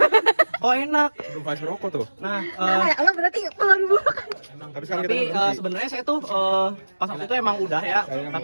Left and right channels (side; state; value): both; inverted; correlation -1.00